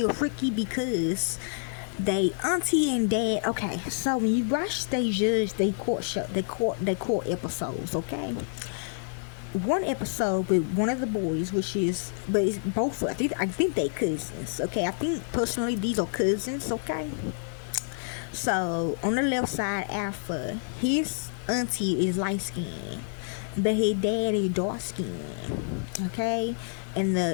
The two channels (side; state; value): right; silent; 59 dB below the other